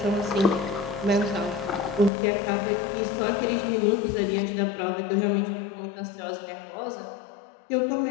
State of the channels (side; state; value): right; drops out; at 2.1 s